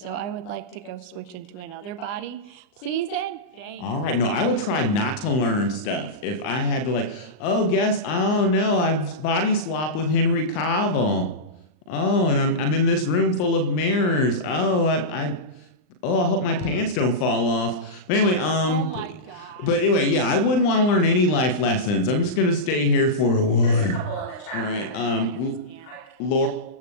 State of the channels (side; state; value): right; late; 39 ms